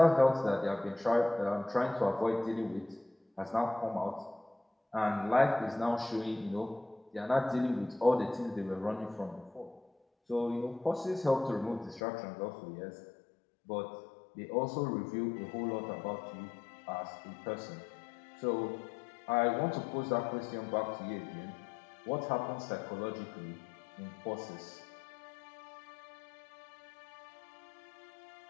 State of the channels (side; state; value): right; drops out; at 12.0 s